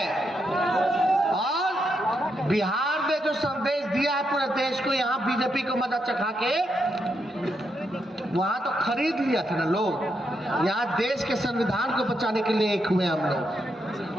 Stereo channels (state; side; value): normal; both; correlation 0.81